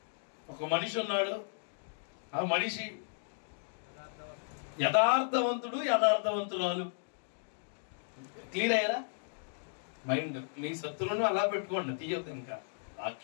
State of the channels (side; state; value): right; silent; digital silence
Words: ఒక మనిషి ఉన్నాడు. ఆ మనిషి యథార్థవంతుడు, యథార్థవంతురాలు. క్లియర్ అయ్యారా? మైండ్ మీ శత్రువును అలా పెట్టుకోండి, తీయొద్దు. ఇంకా